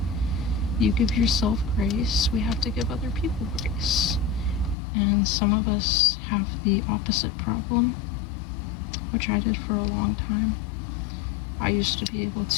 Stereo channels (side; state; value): right; drops out; at 4.8 s